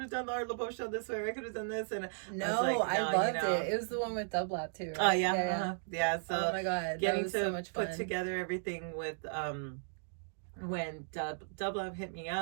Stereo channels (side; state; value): left; silent; digital silence